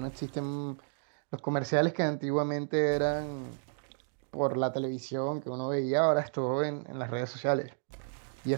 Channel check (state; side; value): silent; left; digital silence